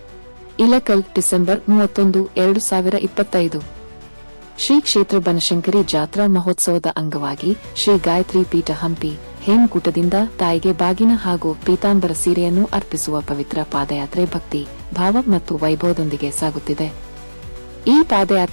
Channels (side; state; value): both; inverted; correlation -1.00